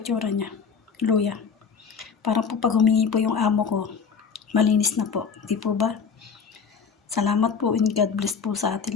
niya. Luya. Para po pag humingi po yung amo ko, malinis na po. Di po ba? Salamat po and God bless po sa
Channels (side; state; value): right; quieter; 6.1 dB